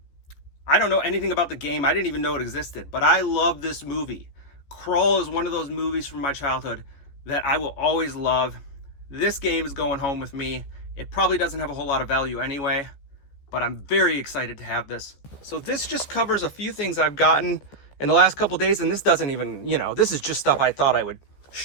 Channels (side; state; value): right; late; 14 ms